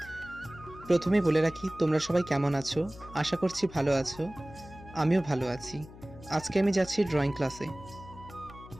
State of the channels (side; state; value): left; noise; hum, 18 dB below the sound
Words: প্রথমেই বলে রাখি, তোমরা সবাই কেমন আছো? আশা করছি ভালো আছো। আমিও ভালো আছি। আজকে আমি যাচ্ছি ড্রয়িং ক্লাসে।